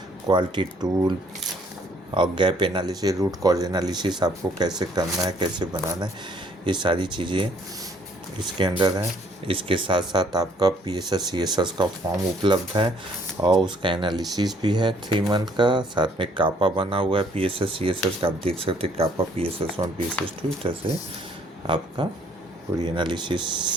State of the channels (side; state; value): both; normal; correlation 0.63